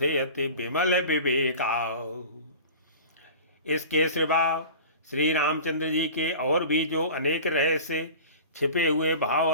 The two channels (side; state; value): both; inverted; correlation -0.38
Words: अति विमल विवेका। इसके सिवा श्री रामचंद्र जी के और भी जो अनेक रहस्य छिपे हुए भाव